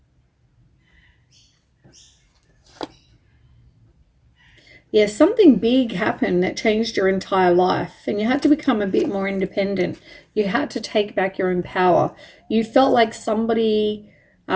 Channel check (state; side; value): identical; both; correlation 1.00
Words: Yeah, something big happened that changed your entire life, and you had to become a bit more independent. You had to take back your own power. You felt like somebody